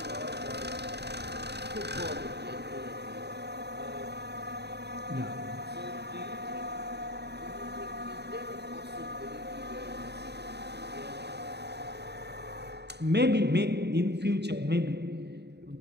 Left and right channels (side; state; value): left; late; 0.49 ms